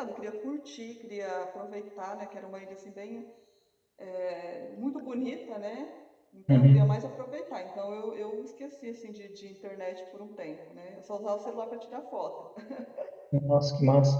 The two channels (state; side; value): identical; both; correlation 1.00